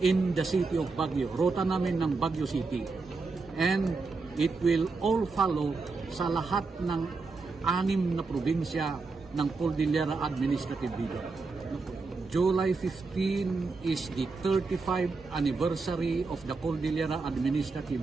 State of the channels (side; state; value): left; quieter; 4.1 dB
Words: the city of Baguio. Rota namin ng Baguio City. And it will all follow sa lahat ng 6 na probinsya ng Cordillera Administrative Region. July 15 is the 35th anniversary of the Cordillera